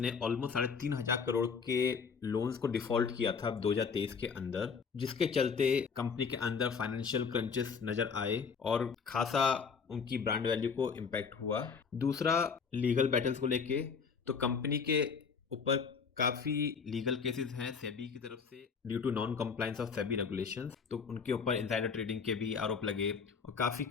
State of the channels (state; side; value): quieter; right; 5.8 dB